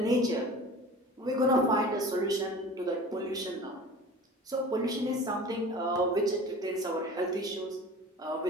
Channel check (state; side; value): normal; both; correlation 0.40